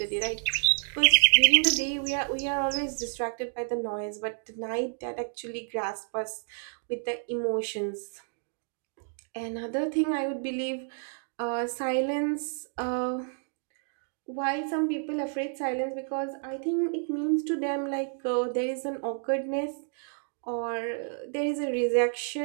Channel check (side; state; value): left; silent; 56 dB below the other